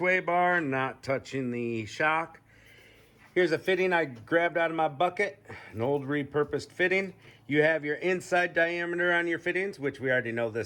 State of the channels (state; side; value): identical; both; correlation 1.00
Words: bar, not touching the shock. Here's a fitting I grabbed out of my bucket, an old repurposed fitting. You have your inside diameter on your fittings, which we already know